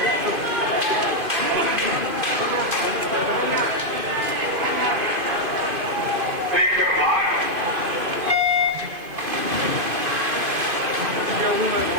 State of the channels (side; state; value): left; late; 2.5 ms